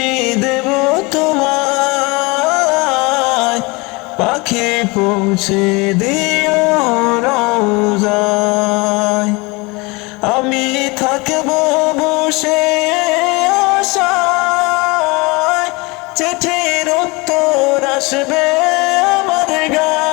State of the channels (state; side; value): quieter; right; 26.2 dB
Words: দেব তোমায়, পাখি পৌঁছে দিও রোজায়। আমি থাকব বসে আশায়, চিঠির উত্তর আসবে আমার